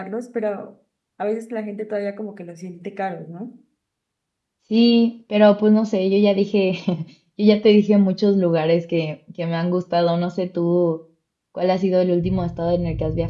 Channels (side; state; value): both; identical; correlation 1.00